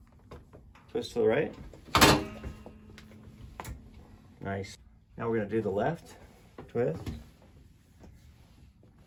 Twist to the right. Nice. Now we're going to do the left. Twist.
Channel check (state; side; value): identical; both; correlation 1.00